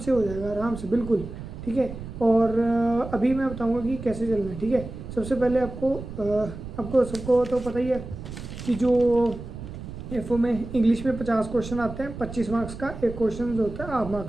हो जाएगा, आराम से, बिल्कुल ठीक है। और अभी मैं बताऊंगा कि कैसे चलना है, ठीक है। सबसे पहले आपको सबको तो पता ही है कि जो FO में इंग्लिश में 50 क्वेश्चन आते हैं, 25 मार्क्स का एक क्वेश्चन जो होता है हाफ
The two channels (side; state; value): right; noise; rumble, 11 dB below the sound